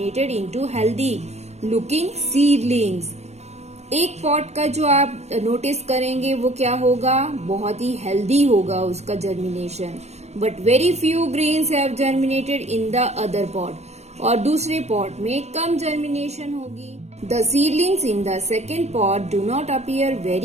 into healthy looking seedlings. एक पॉट का जो आप नोटिस करेंगे वो क्या होगा, बहुत ही हेल्दी होगा उसका germination. But very few grains have germinated in the other pot. और दूसरे पॉट में कम जर्मिनेशन होगी. The seedlings in the second pot do not appear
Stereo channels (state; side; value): late; left; 0.32 ms